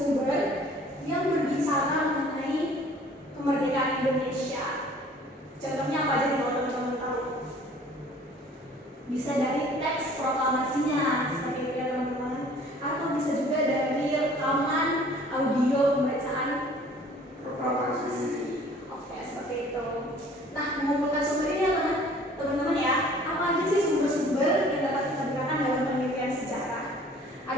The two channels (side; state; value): both; normal; correlation 0.52